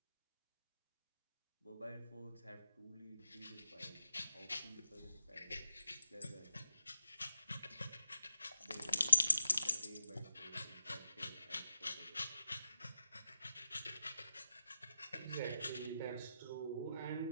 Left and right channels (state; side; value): inverted; both; correlation -0.88